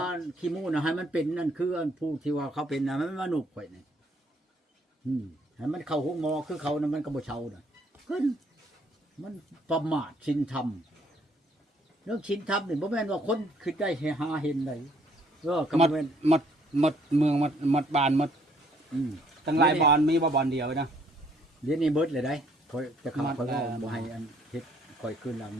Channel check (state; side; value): normal; both; correlation 0.64